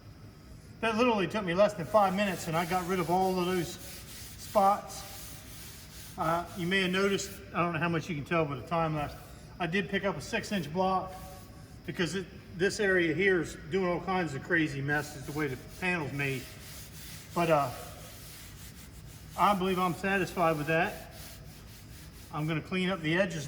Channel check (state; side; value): identical; both; correlation 1.00